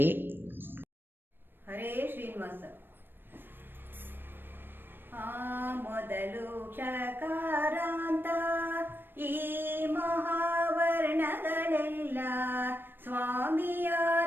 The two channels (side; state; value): left; late; 0.097 ms